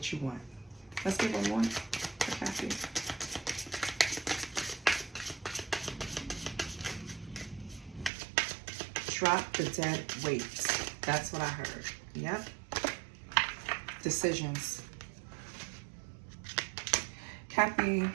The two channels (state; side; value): drops out; left; at 8.1 s